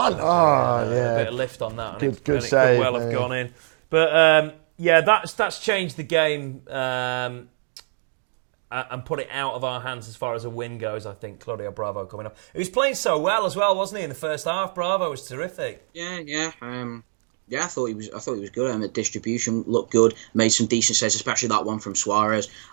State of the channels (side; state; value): left; silent; digital silence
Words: Oh yeah. A bit of lift on that. Good save. Could well have gone in, but that's changed the game and put it out of our hands as far as a win goes. I think Claudio Bravo coming up. He was playing so well as well, wasn't he? In the first half, Bravo was terrific. Yeah. I thought he was good. The distribution looked good. Made some decent saves, especially that one from Suarez.